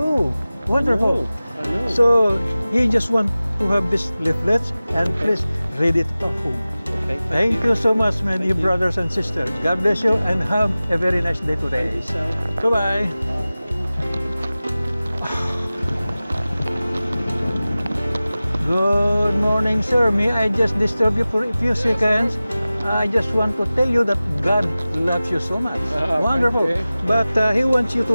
Wonderful. I know. So he just want to have these leaflets and please read it at home. Okay, Thank you so much, my dear you. brothers and sisters. God bless you and have a very nice day today. So, Bye-bye. Good morning, sir. May I just disturb you for a few seconds? I just want to tell you that God loves you so much. Wonderful. thank you. But He wants you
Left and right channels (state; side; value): inverted; both; correlation -0.97